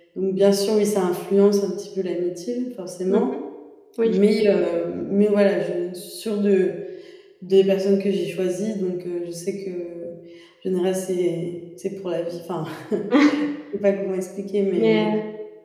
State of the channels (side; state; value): both; identical; correlation 1.00